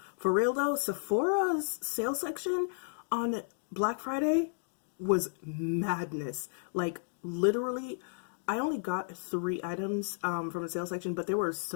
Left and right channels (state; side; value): silent; right; digital silence